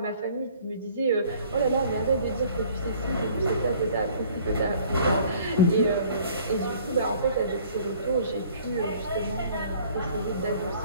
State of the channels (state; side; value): inverted; both; correlation -0.54